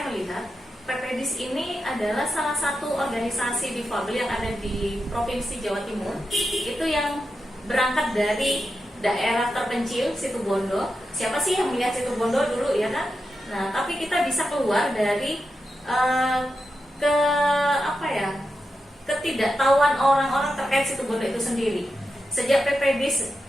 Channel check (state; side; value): normal; both; correlation 0.88